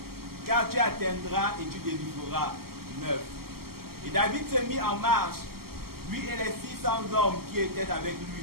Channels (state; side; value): late; left; 0.94 ms